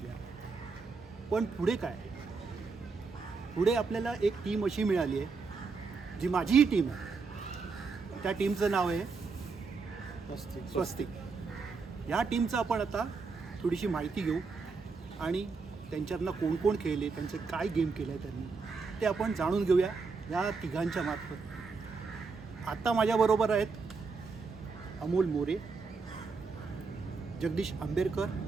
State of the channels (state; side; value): quieter; left; 4.6 dB